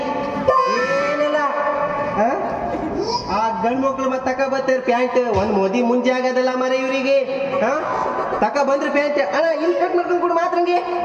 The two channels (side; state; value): both; identical; correlation 1.00